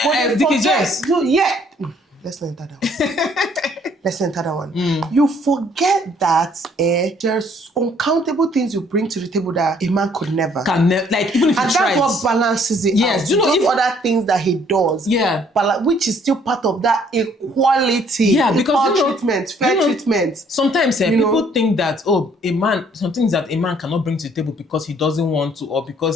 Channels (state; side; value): normal; both; correlation 0.63